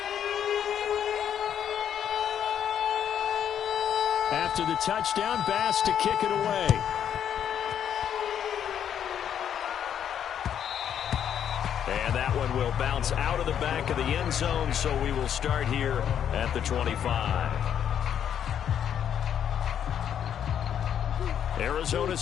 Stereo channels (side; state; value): right; quieter; 9.2 dB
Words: After the touchdown, Bass to kick it away. And that one will bounce out of the back of the end zone, so we will start here at the 25.